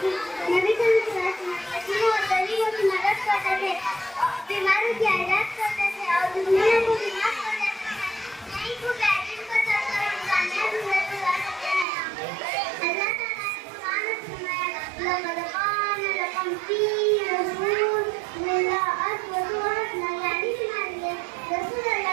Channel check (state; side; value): drops out; left; at 11.9 s